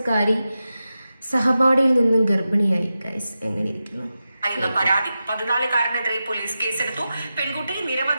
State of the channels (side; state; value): both; inverted; correlation -0.92